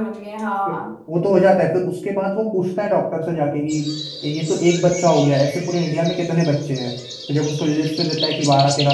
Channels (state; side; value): identical; both; correlation 1.00